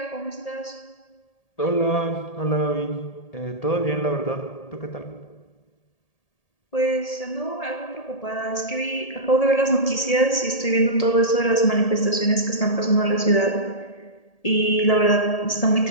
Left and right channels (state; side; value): late; right; 1.8 ms